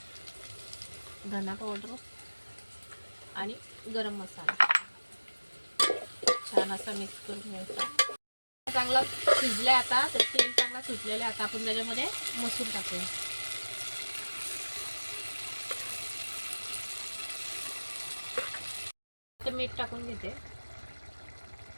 धना पावडर आणि गरम मसाला छान असा मिक्स करून घ्यायचा। चांगला शिजले आता, तर तेल चांगला सुटलेले। आता आपण त्याच्यामध्ये मसूर टाकूया। तर मीठ टाकून घेते,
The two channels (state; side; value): inverted; both; correlation -1.00